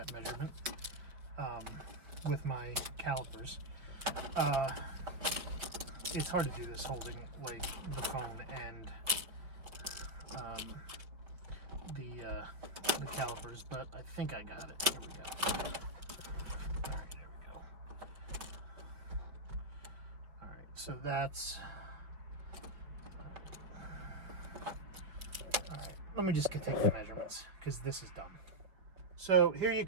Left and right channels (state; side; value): late; left; 5.3 ms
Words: measurement with my calipers. It's hard to do this holding like the phone and the calipers, but I think I got it. Here we go. All right, there we go. All right, so that's. Let me just take the measurements because this is done. So here you